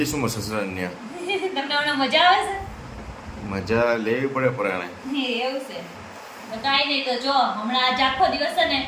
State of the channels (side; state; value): both; identical; correlation 1.00